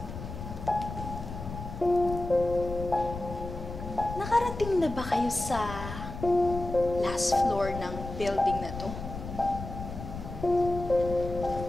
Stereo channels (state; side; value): noise; left; rumble, 9 dB below the sound